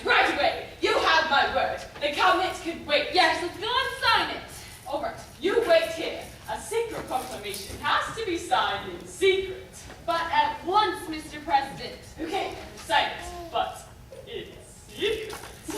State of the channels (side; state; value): both; identical; correlation 1.00